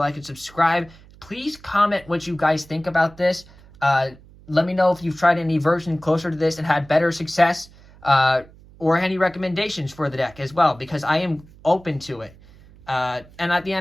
and subscribe. Please comment what you guys think about this. Let me know if you've tried any version closer to this and had better success, or any recommendations for the deck as well, because I am open to it. And at the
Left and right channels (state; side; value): noise; right; hum, 24 dB below the sound